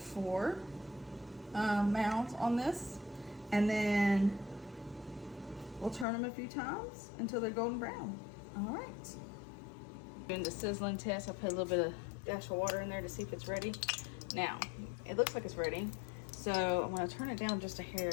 mounds on this, and then we'll turn them a few times until they're golden brown. All right. Doing the sizzling test, I put a little bit of dash of water in there to see if it's ready. Now, it looks like it's ready. So I'm gonna turn it down just a hair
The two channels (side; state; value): right; drops out; at 6.1 s